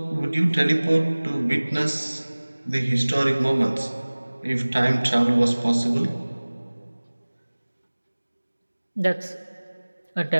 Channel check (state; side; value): inverted; both; correlation -1.00